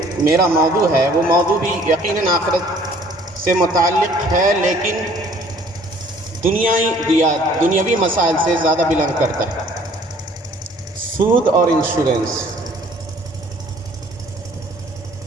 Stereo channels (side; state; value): both; normal; correlation 0.56